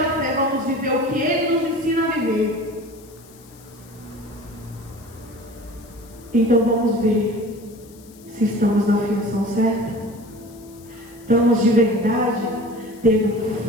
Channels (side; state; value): left; noise; hiss, 25 dB below the sound